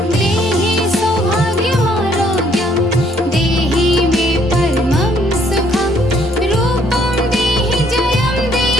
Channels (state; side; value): normal; both; correlation 0.65